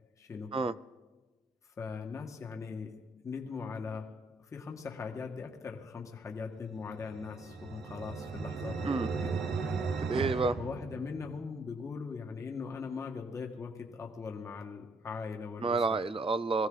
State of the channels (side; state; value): both; normal; correlation 0.69